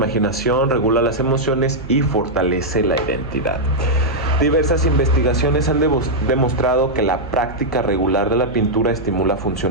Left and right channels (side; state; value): right; noise; hum, 14 dB below the sound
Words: regula las emociones y fortalece la identidad. Diversas investigaciones han demostrado que la práctica regular de la pintura estimula